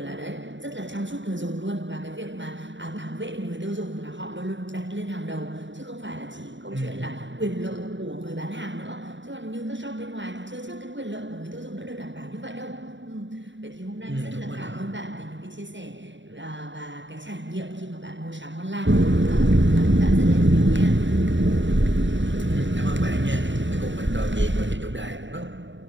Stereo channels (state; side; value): late; left; 0.54 ms